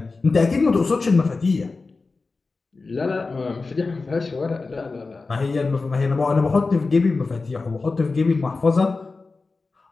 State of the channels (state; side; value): quieter; right; 3.9 dB